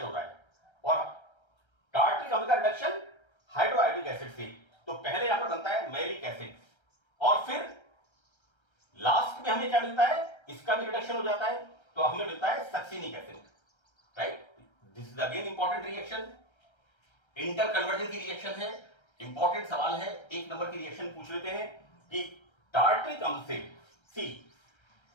हो रहा है और टार्ट्रिक अम्ल का रिडक्शन हाइड्रोआयोडिक एसिड से, तो पहले यहां पर बनता है मैलिक एसिड और फिर लास्ट में हमें क्या मिलता है, इसका भी रिडक्शन हो जाता है तो हमें मिलता है succinic acid, right. This is again important reaction, inter conversion की रिएक्शन है। इंपॉर्टेंट सवाल है, 1 नंबर की रिएक्शन पूछ लेते हैं कि टार्ट्रिक अम्ल से सी,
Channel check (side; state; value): right; late; 1.3 ms